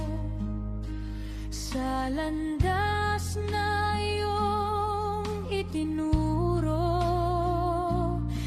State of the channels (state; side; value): identical; both; correlation 1.00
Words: sa landas na iyong itinuro.